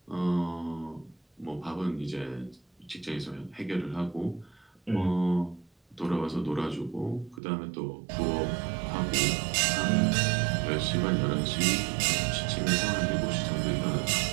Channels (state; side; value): drops out; left; at 7.4 s